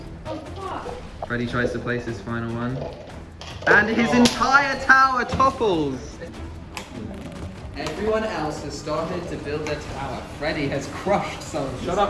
Freddie tries to place his final one. And his entire tower topples. Everyone else has started to build their tower. Freddie has crushed some. Shut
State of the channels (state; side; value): identical; both; correlation 1.00